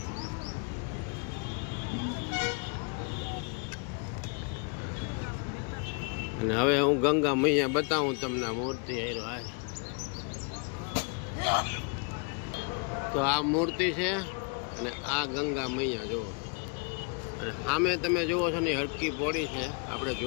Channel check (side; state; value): right; quieter; 35.9 dB